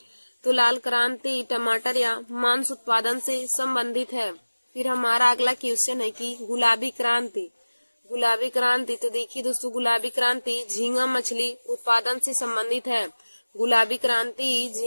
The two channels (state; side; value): inverted; both; correlation -1.00